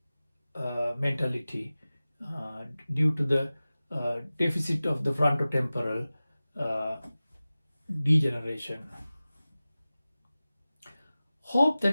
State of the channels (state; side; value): inverted; both; correlation -0.97